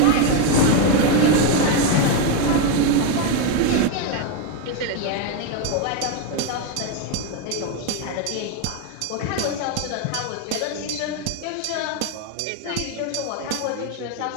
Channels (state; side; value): different; both; correlation 0.02